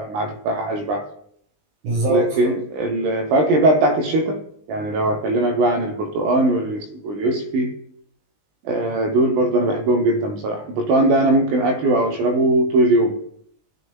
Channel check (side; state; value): left; late; 19 ms